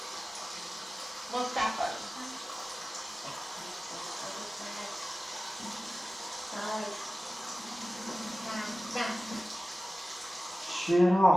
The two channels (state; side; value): normal; both; correlation 0.97